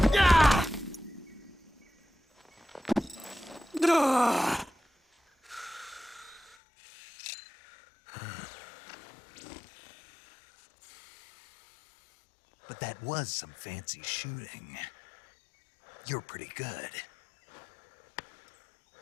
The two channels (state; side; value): drops out; right; at 6.6 s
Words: But that was some fancy shooting. You're pretty good.